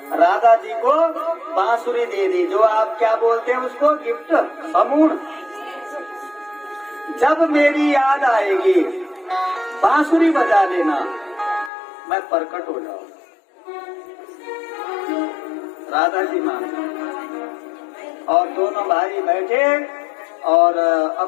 राधा जी को बांसुरी दे दी, जो आप क्या बोलते हैं उसको, गिफ्ट, समूह। जब मेरी याद आएगी बांसुरी बजा लेना, मैं प्रकट हो जाऊंगा। राधा जी मान और दोनों भाई बैठे और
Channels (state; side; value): drops out; right; at 11.7 s